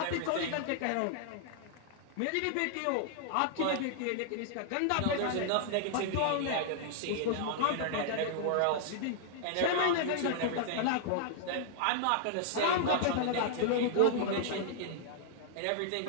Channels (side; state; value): both; different; correlation -0.01